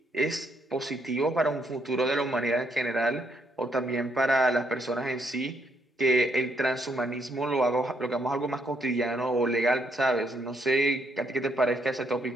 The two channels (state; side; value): normal; both; correlation 0.74